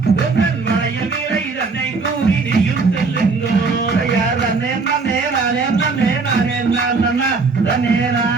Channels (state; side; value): quieter; left; 4.3 dB